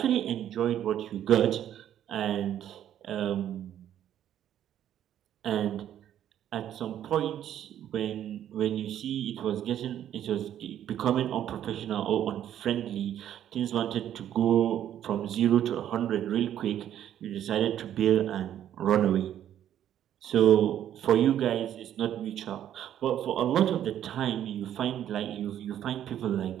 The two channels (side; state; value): left; quieter; 10.8 dB